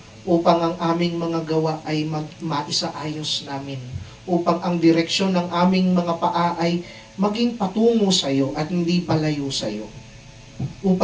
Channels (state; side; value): identical; both; correlation 1.00